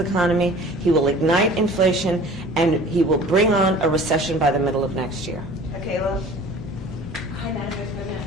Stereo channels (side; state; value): both; normal; correlation 0.45